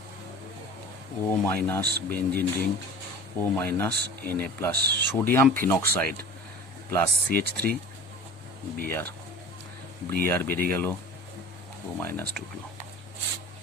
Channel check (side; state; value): both; normal; correlation 0.40